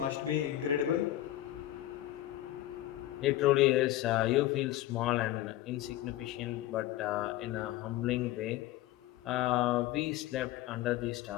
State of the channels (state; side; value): quieter; right; 14.5 dB